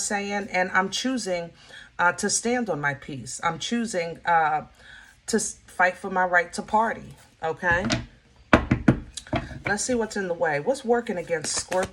And I'm choosing to stand on my peace. I'm choosing to fight for my right to party. Okay? Let's see what's in the way. What's working against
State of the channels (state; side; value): identical; both; correlation 1.00